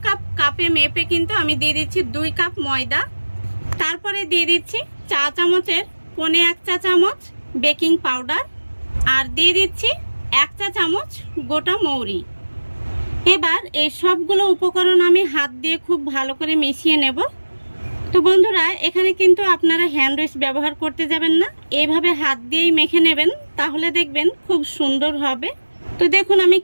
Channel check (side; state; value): both; inverted; correlation -1.00